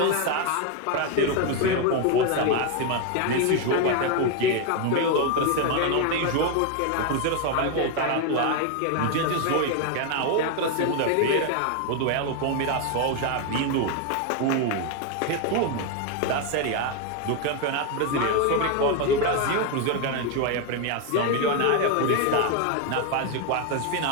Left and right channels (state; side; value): different; both; correlation 0.01